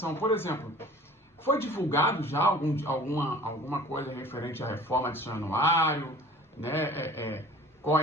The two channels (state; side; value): normal; both; correlation 0.46